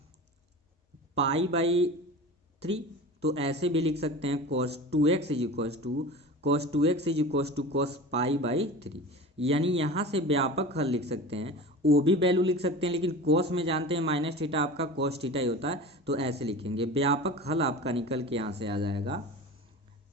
पाई/3। तो ऐसे भी लिख सकते हैं cos 2x is equal to cos पाई/3, यानी यहाँ से व्यापक हल लिख सकते हैं, वो भी वैल्यू लिख सकते हैं, लेकिन cos में जानते हैं माइनस थीटा आपका cos थीटा ही होता है, तो ऐसे लिखेंगे। व्यापक हल आपका निकल के यहाँ से आ जाएगा,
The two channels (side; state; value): both; normal; correlation 0.34